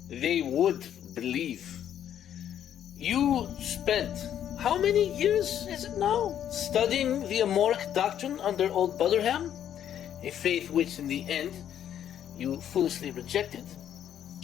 They would believe. You spent how many years is it now studying the Amoric doctrine under old Butterham? A faith which in the end you foolishly rejected.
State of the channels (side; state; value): right; quieter; 10.1 dB